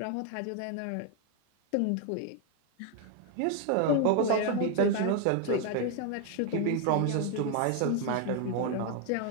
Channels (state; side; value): different; both; correlation 0.01